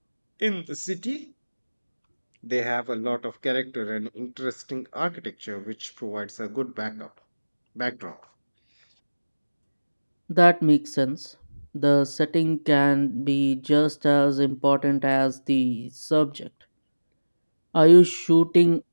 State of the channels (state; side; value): inverted; both; correlation -1.00